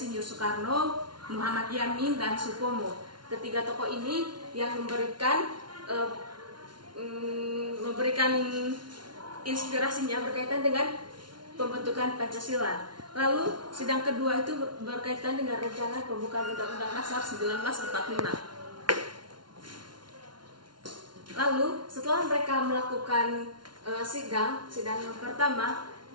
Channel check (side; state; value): left; late; 0.71 ms